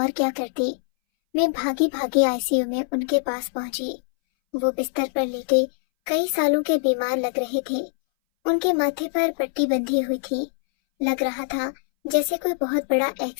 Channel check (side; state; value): right; silent; 61 dB below the other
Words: کیا کرتی۔ میں بھاگی بھاگی ICU میں ان کے پاس پہنچی۔ وہ بستر پر لیٹے کئی سالوں کے بیمار لگ رہے تھے۔ ان کے ماتھے پر پٹی بندھی ہوئی تھی۔ لگ رہا تھا جیسے کوئی بہت بڑا